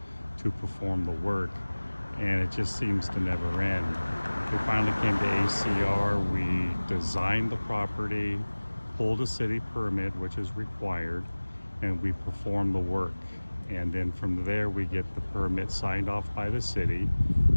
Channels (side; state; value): both; inverted; correlation -1.00